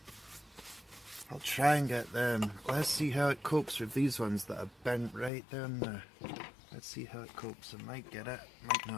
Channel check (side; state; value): right; drops out; at 5.3 s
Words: I'll try and get them. Let's see how it copes with these ones that are bent right down there. Let's see how it copes. I might get it, might